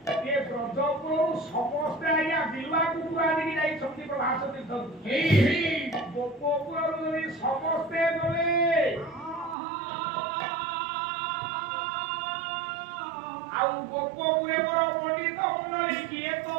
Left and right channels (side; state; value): left; drops out; at 9.6 s